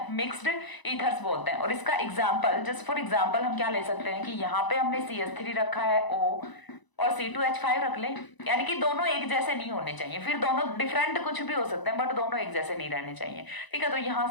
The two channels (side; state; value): right; late; 1.0 ms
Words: मिक्स्ड ईथर्स बोलते हैं। और इसका एग्जांपल, जस्ट फॉर एग्जांपल हम क्या ले सकते हैं कि यहाँ पे हमने CH3 रखा है O और C2H5 रख ले, यानी कि दोनों एक जैसे नहीं होने चाहिए, फिर दोनों डिफरेंट कुछ भी हो सकते हैं बट दोनों एक जैसे नहीं रहने चाहिए। ठीक है, तो यहाँ